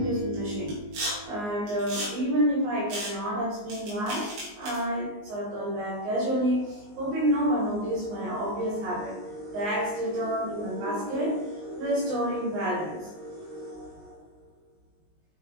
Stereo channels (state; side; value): late; left; 19 ms